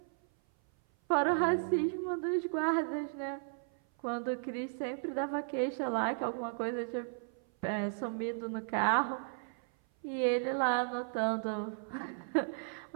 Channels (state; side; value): silent; left; 54 dB below the other